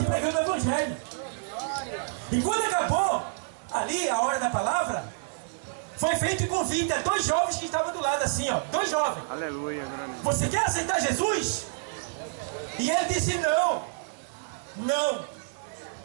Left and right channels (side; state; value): left; silent; 59 dB below the other